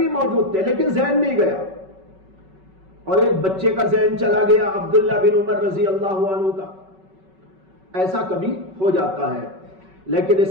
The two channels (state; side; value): late; left; 5.3 ms